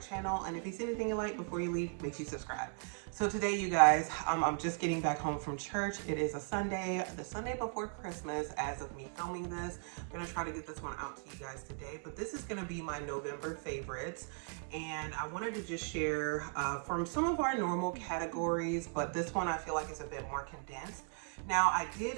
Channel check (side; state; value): left; silent; 53 dB below the other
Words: And if you see anything you like before you leave, make sure you subscribe. So today, you guys, I'm just getting back home from church. It is a Sunday, the Sunday before Christmas. As of me filming this, I'm gonna try to get this one out to you guys today. But this is gonna be my November favorites. And I wanted to just share from some of our normal categories, but this one I feel like is a bit more condensed. Now, I